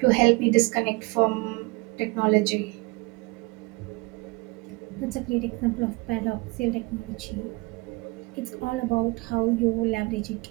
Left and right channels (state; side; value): quieter; left; 25.3 dB